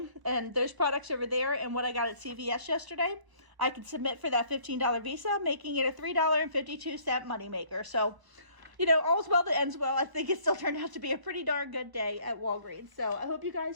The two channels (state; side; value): late; left; 1.0 ms